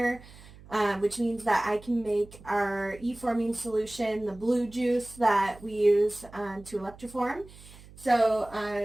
which means that I can make our E-forming solution, the blue juice that we use to electroform. So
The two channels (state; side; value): noise; right; hum, 20 dB below the sound